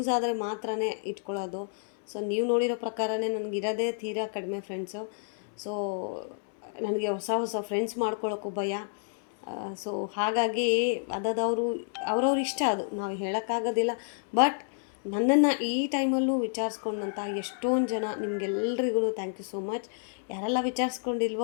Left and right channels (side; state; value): right; silent; 58 dB below the other